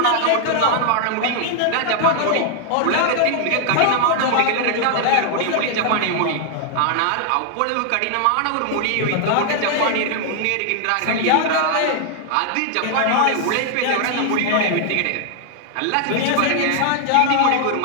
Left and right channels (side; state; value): both; different; correlation 0.00